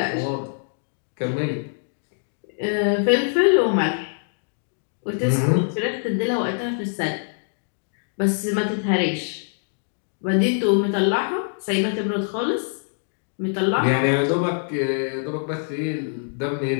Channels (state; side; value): silent; right; digital silence